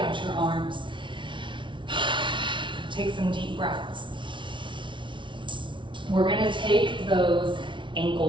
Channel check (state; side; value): late; left; 0.24 ms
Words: your arms. Take some deep breaths. We're gonna take those